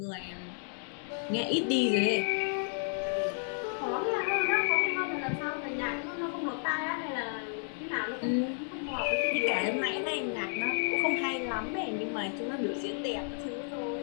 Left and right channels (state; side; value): silent; right; 56 dB below the other